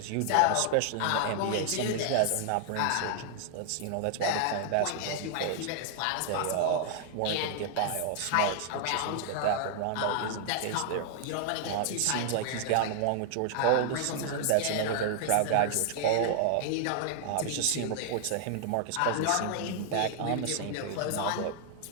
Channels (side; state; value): both; different; correlation 0.00